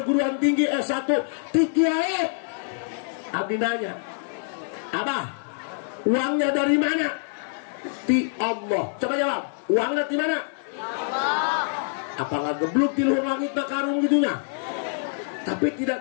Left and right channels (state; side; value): silent; right; digital silence